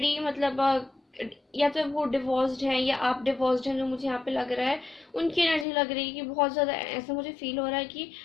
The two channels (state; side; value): drops out; right; at 5.7 s